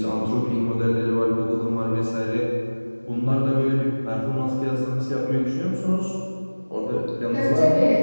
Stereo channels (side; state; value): both; inverted; correlation -1.00